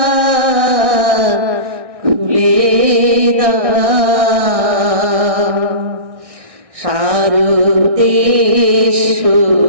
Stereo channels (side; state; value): left; late; 1.6 ms